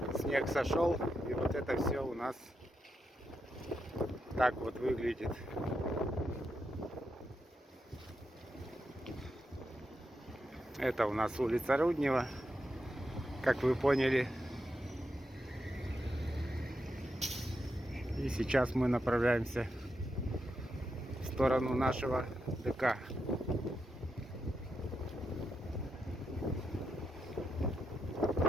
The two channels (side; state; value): both; normal; correlation 0.85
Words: Снег сошел, и вот это все у нас так вот выглядит. Это у нас улица Руднева, как вы поняли. И сейчас мы направляемся в сторону нашего ДК.